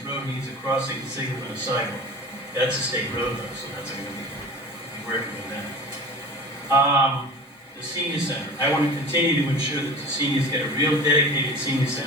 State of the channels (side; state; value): both; normal; correlation 0.37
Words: road needs a crossing signal and a sidewalk. That's a state road though, so that's going to be working with that. The senior center. I want to continue to ensure that the seniors get a real dedicated senior